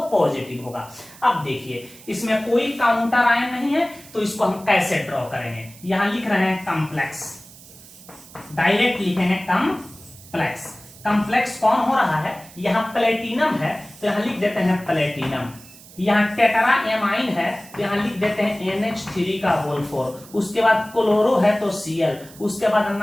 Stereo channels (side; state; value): right; noise; hiss, 20 dB below the sound